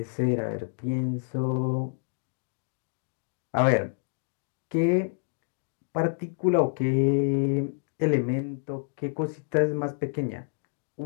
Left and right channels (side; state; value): right; silent; digital silence